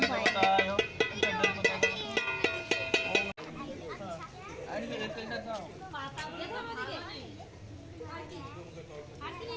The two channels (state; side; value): identical; both; correlation 1.00